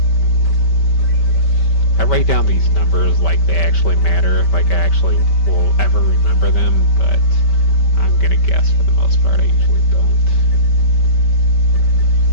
I write down these numbers like they actually matter, like I actually will ever remember them, but I'm gonna guess for the most part I usually don't.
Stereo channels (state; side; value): late; right; 5.2 ms